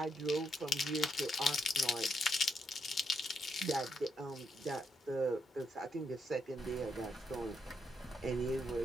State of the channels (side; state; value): both; normal; correlation 0.78